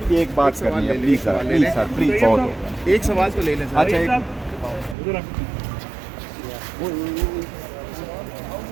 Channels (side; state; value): left; drops out; at 5.0 s